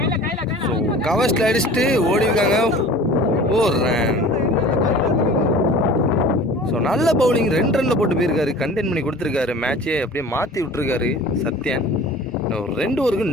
ஸோ கவர்ஸ்ல அடிச்சுட்டு ஓடிருக்காங்க. ஒரு ரன். ஸோ நல்ல பவுலிங் 2 ரன்ல போட்டு போயிருக்காரு. கண்டெயின் பண்ணி கொடுத்துருக்காரு. மேட்சே அப்படியே மாற்றி விட்டுருக்காரு சத்யன். 2 ஓவருக்கு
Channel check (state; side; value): normal; both; correlation 0.42